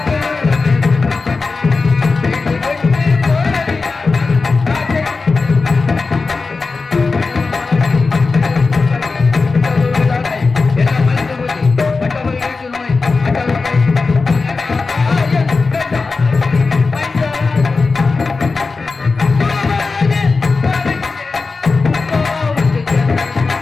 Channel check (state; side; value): quieter; right; 4.2 dB